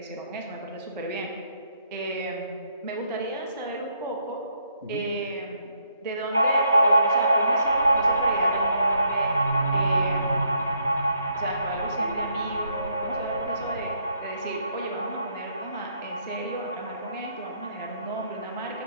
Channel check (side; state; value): both; inverted; correlation -0.72